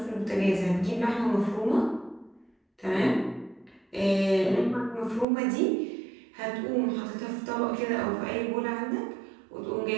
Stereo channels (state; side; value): drops out; left; at 5.2 s